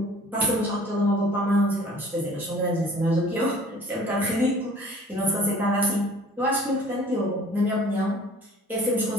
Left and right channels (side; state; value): both; normal; correlation 0.50